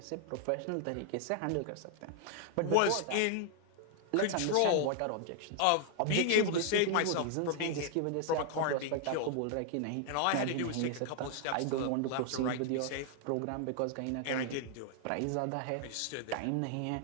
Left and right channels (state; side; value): different; both; correlation 0.00